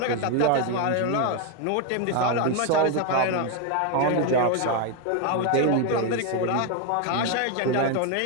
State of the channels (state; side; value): different; both; correlation 0.01